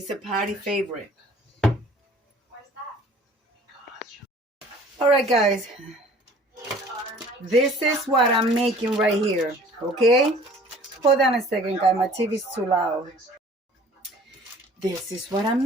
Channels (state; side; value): normal; both; correlation 0.50